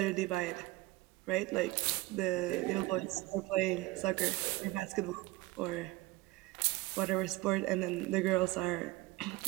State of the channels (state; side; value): quieter; left; 19.2 dB